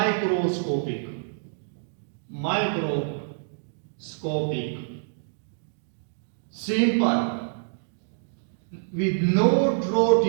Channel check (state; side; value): silent; left; digital silence